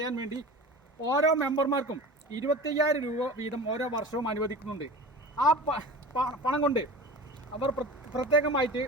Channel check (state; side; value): normal; both; correlation 0.35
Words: വേണ്ടി ഓരോ മെമ്പർമാർക്കും 25,000 രൂപ വീതം ഓരോ വർഷവും അനുവദിക്കുന്നുണ്ട്. ആ പണം കൊണ്ട് അവർ പ്രത്യേകമായിട്ട്